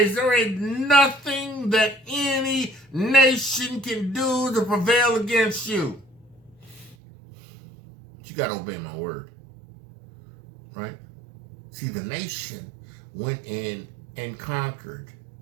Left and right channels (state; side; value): drops out; left; at 7.0 s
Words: There ain't nothing that any nation can do to prevail against you. But you got to obey my word. Right? See, the nation went in and conquered